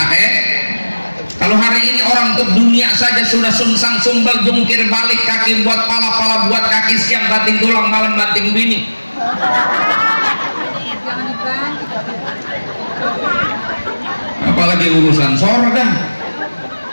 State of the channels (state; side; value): inverted; both; correlation -1.00